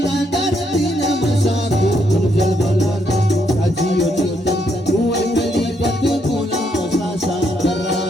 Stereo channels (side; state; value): both; normal; correlation 0.75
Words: दर्दी ना मशाकू जल बला जियो चेतन हुए कलीपत बोला शाशा कर रहा